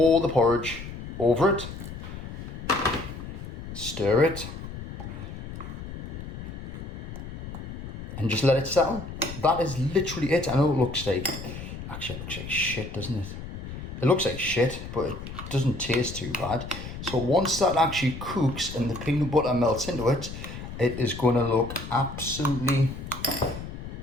the porridge over it. Stir it. And just let it settle. That is literally it. I know it looks like, actually it looks like shit, doesn't it? It looks like shit, but it doesn't taste too bad. So once that actually cooks and the peanut butter melts into it, it is going to look absolutely,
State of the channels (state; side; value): noise; left; rumble, 9 dB below the sound